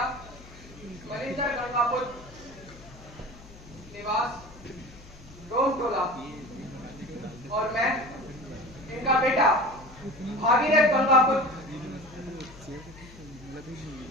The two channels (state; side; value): noise; left; hum, 19 dB below the sound